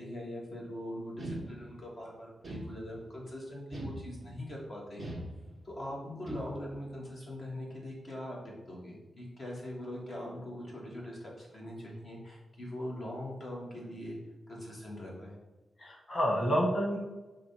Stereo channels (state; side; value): normal; both; correlation 0.86